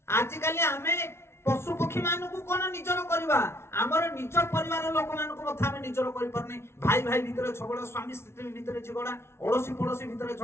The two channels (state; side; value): late; right; 0.12 ms